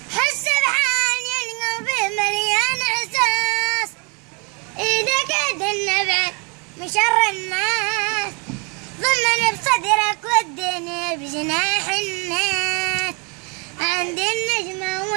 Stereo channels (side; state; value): left; quieter; 33.4 dB